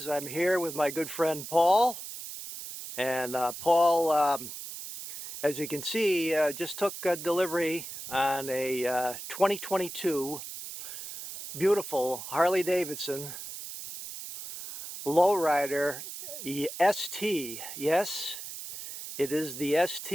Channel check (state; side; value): noise; right; hiss, 10 dB below the sound